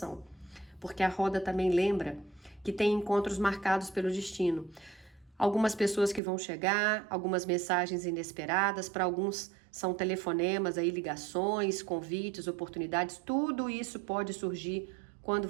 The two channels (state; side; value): drops out; left; at 6.2 s